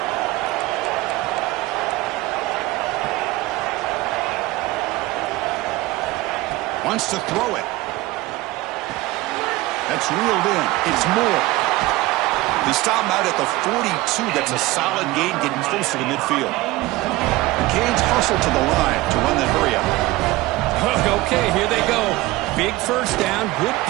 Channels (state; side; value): quieter; left; 19.1 dB